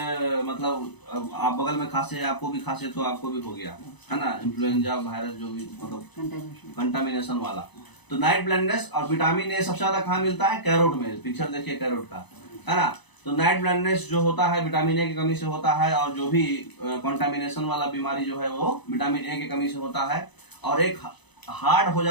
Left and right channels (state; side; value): late; right; 0.99 ms